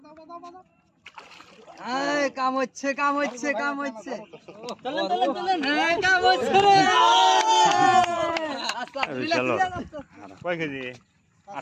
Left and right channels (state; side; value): identical; both; correlation 1.00